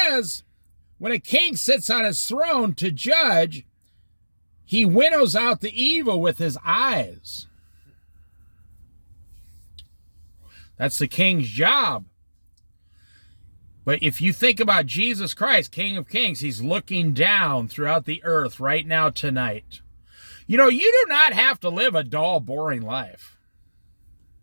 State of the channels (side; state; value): both; inverted; correlation -1.00